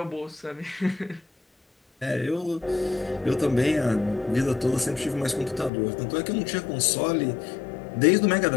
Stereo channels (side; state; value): right; drops out; at 5.7 s